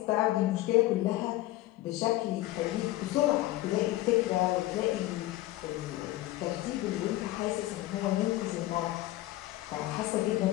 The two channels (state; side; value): quieter; right; 16.6 dB